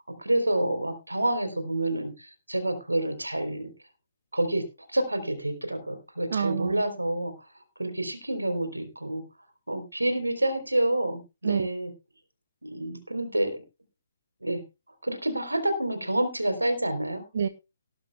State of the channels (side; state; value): both; inverted; correlation -0.93